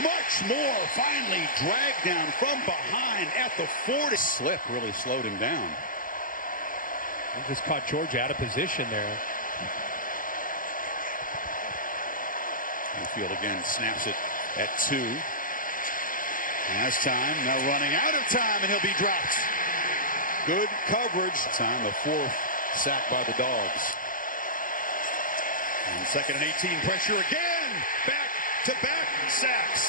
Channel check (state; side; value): late; right; 0.40 ms